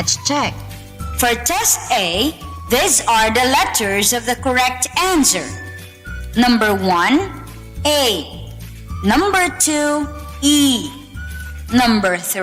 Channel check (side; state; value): both; identical; correlation 1.00